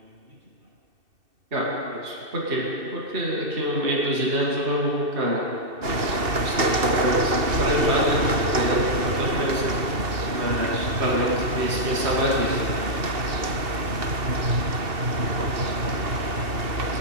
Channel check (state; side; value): late; left; 2.7 ms